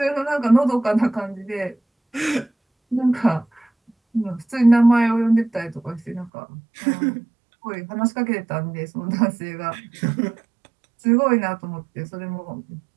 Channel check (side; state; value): left; drops out; at 6.3 s